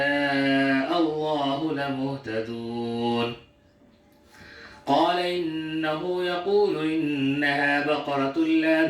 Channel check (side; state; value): both; identical; correlation 1.00